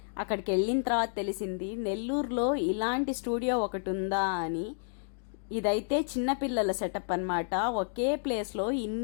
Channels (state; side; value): silent; right; digital silence